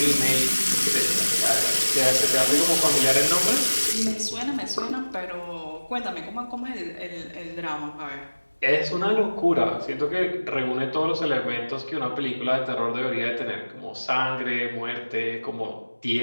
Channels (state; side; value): inverted; both; correlation -1.00